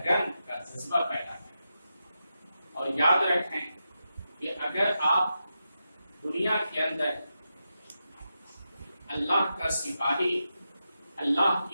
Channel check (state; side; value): inverted; both; correlation -0.88